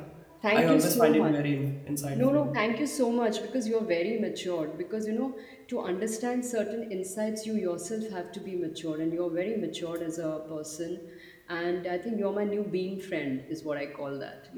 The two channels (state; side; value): identical; both; correlation 1.00